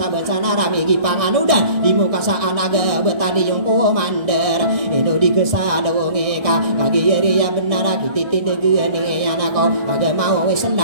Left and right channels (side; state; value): left; late; 1.6 ms